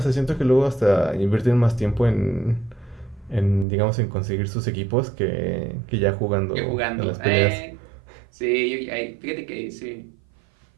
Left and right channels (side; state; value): left; drops out; at 3.7 s